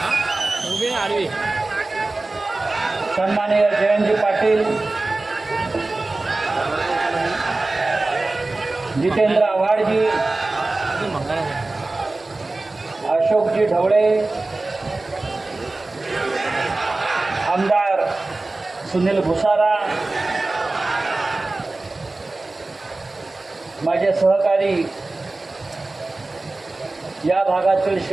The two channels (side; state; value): left; quieter; 3.2 dB